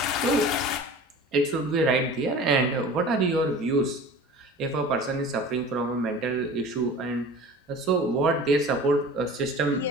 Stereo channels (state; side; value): normal; both; correlation 0.40